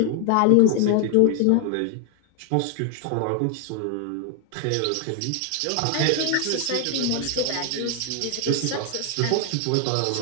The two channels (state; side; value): different; both; correlation 0.00